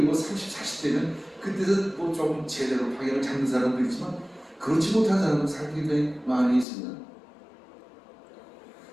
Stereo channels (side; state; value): right; drops out; at 6.7 s